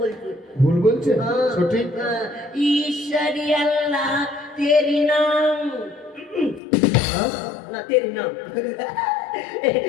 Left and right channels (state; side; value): drops out; right; at 6.6 s